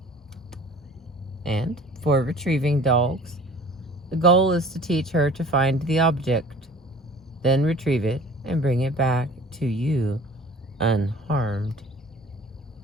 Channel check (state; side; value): normal; both; correlation 0.46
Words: And for retrieving dogs, the goal is to teach her to find the object, then retrieve it and bring it back to you unharmed.